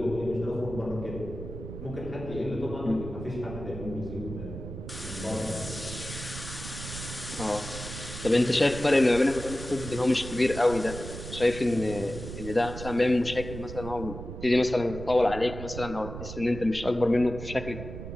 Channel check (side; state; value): right; noise; rumble, 9 dB below the sound